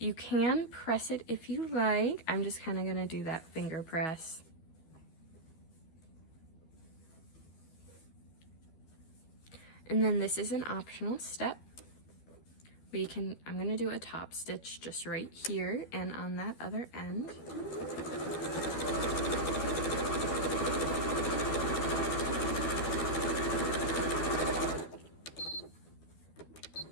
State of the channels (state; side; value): late; right; 12 ms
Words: can press it if you like. I'm just kind of gonna do that finger press. And then this is an optional step. I'm gonna do a top stitch just right here and on that other end.